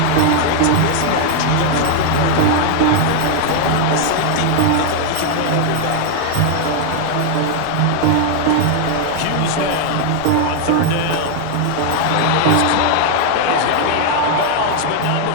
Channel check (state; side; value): different; both; correlation 0.00